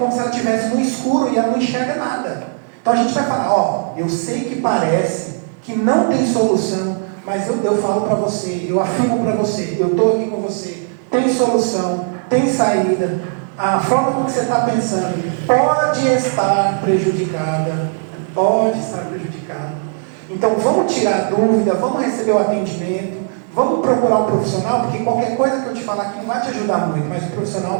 se ela estivesse no escuro e ela não enxerga nada. Então a gente vai falar, eu sei que parece que não tem solução, mas eu falo para você, eu afirmo para você, eu estou aqui com você, tem solução, tem saída, a forma como você está pensando pode estar prejudicada, então vamos tirar a dúvida, vamos receber o atendimento, vamos procurar um profissional, porque qualquer coisa que eu te falar aqui não vai te ajudar muito, mas o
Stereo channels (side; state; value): left; silent; 68 dB below the other